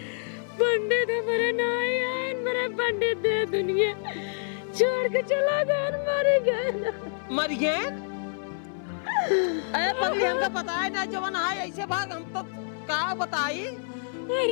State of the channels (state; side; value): silent; right; 60 dB below the other